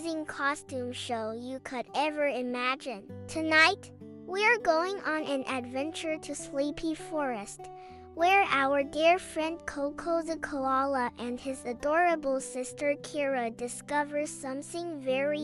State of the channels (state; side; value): identical; both; correlation 1.00